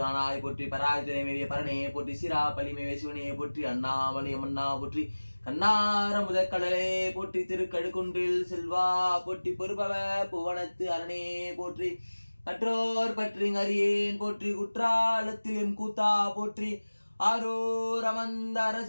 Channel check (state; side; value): inverted; both; correlation -1.00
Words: ஆனாய் போற்றி பராஜனை மேவிய பரணையை போற்றி சிரா பலி மேவிய சிவனையை போற்றி அண்ணாமலை அம்மன்னா போற்றி கண்ணார முதற்கடலே போற்றி திருக்கடுக்குன்றில் செல்வா போற்றி பொறுபவ புவனத்து அரணே போற்றி மற்றோர் பற்றி அறியேன் போற்றி குற்றாலத்தில் எம் கூத்தா போற்றி ஆரூர் அமர்ந்த